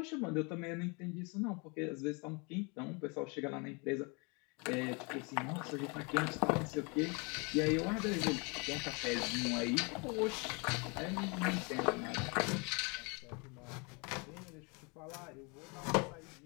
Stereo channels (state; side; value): quieter; right; 31.6 dB